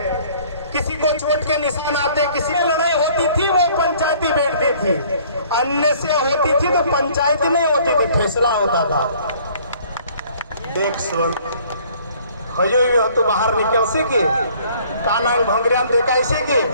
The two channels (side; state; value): both; inverted; correlation -0.56